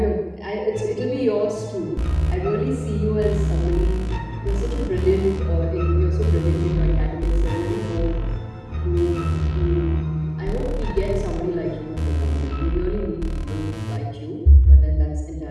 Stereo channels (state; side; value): identical; both; correlation 1.00